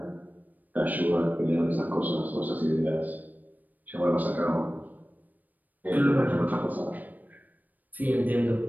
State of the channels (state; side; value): late; left; 0.083 ms